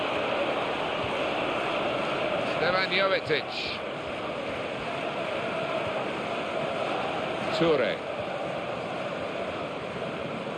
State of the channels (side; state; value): both; identical; correlation 1.00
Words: Stefan Jovetic. Toure.